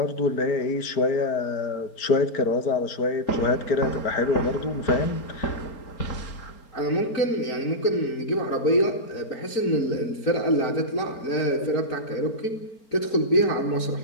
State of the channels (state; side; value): late; right; 4.4 ms